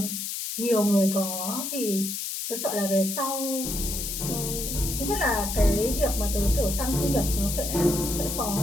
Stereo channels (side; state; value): left; noise; hiss, 4 dB below the sound